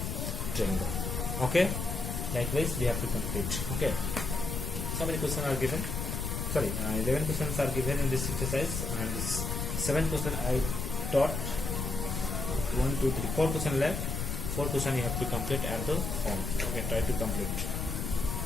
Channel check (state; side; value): noise; left; rumble, 3 dB below the sound